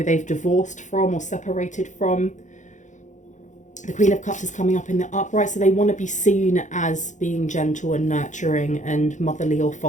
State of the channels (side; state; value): right; late; 0.35 ms